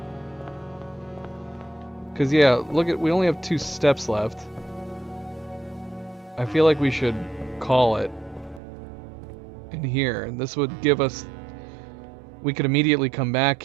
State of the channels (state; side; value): drops out; left; at 8.6 s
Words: Cause yeah, look at, we only have 2 steps left. I feel like we should call it in here, and this would give us, we could immediately come back